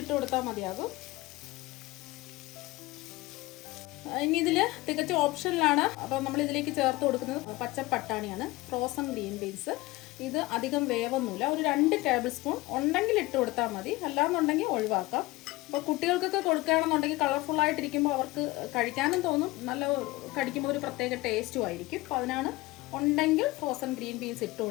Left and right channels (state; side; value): quieter; right; 20.3 dB